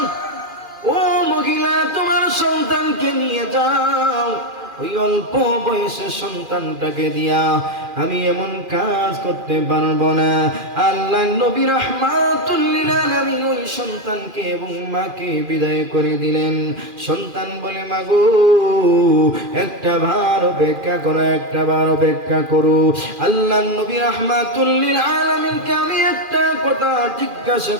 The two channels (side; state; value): left; late; 2.4 ms